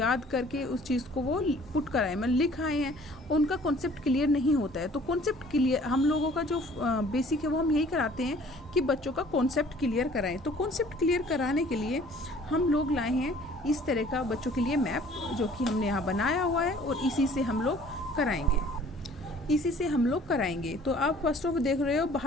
करके उस चीज़ को वो पुट कराए, मतलब लिख आए हैं, उनका कॉन्सेप्ट क्लियर नहीं होता है। तो कॉन्सेप्ट क्लियर हम लोगों का जो बेसिक है वो हम यही कराते हैं कि बच्चों का कॉन्सेप्ट क्लियर कराएं। तो कॉन्सेप्ट क्लियर कराने के लिए हम लोग लाए हैं इस तरह का बच्चों के लिए मैप, जो कि हमने यहाँ बनाया हुआ है और इसी से हम लोग कराएंगे। तो आप फर्स्ट ऑफ देख रहे हो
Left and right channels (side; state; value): both; normal; correlation 0.53